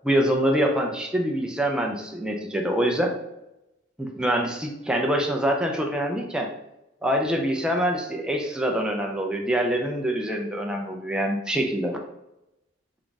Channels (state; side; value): normal; both; correlation 0.63